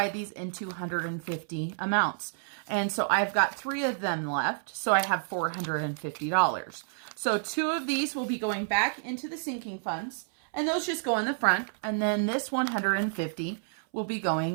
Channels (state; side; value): silent; left; 58 dB below the other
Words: these into 150 amounts. And so I've got 3 of them left. So I have $450. So 2 of these will be going back into the sinking funds, and those just go in the front. And then this 150 will be